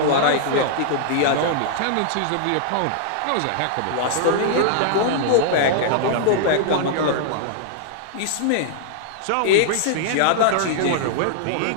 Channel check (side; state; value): both; different; correlation -0.01